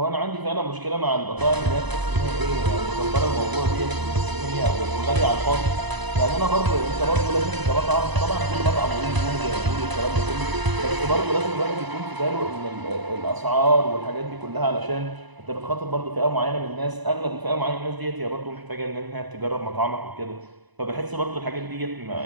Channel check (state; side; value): late; left; 1.0 ms